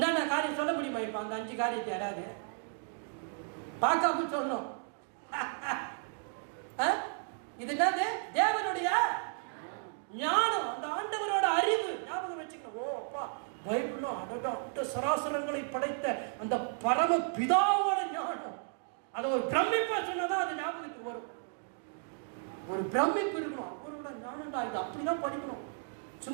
காரியம் சொல்ல முடியுமா? இப்ப அந்த 5 காரியத்தை யாராவது பார்க்காம சொல்லணும். இது என்னது? தேவனுடைய ஞானம், அந்த ஆண்டவரோட அறிவு. ஞாபகம் வச்சுக்கணும். ஓ அப்பா, பைபிளும் அந்த சராசரங்களை படைத்த அந்த பரம பிதாவோட ஞானம். அதை ஒரு பிரமிப்பா சொன்னதான் அது ஞாபகத்துக்கு வரும். ஒரு பிரமிப்பு இருக்கணும். அவரோட ஞானம்டா இது, அப்படிதான் படிக்கணும்.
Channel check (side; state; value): left; silent; 55 dB below the other